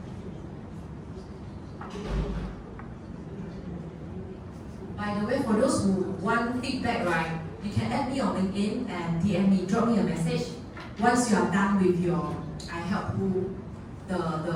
By the way, for those who want feedback, right, you can add me on LinkedIn and DM me, drop me a message. Once you are done with your, I help you the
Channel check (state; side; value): identical; both; correlation 1.00